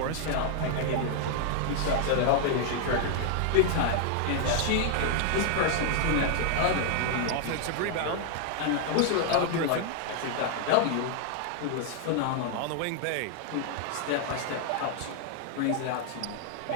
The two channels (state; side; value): different; both; correlation 0.00